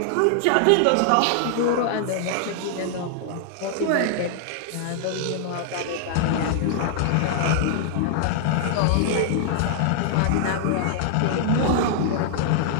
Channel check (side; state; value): both; different; correlation -0.01